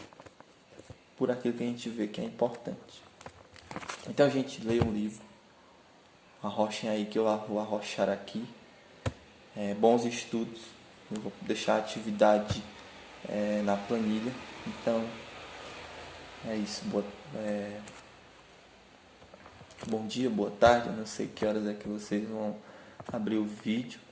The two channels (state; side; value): identical; both; correlation 1.00